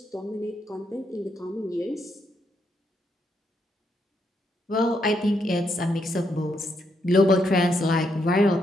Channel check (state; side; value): normal; both; correlation 0.78